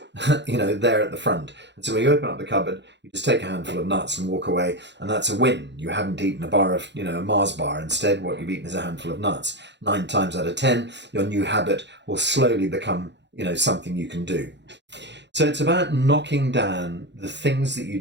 there at the front. And so when you open up the cupboard, you just take a handful of nuts and walk away, and that's a win. You haven't eaten a bar of, a Mars bar. Instead, what you've eaten is a handful of nuts. 9 times out of 10, your new habit will slowly become, something you can do. So it's about knocking down the things that you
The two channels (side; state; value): left; late; 0.51 ms